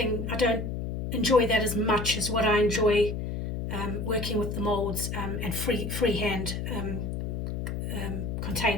I don't enjoy that as much as what I enjoy working with the molds and freehand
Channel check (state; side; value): noise; left; hum, 4 dB below the sound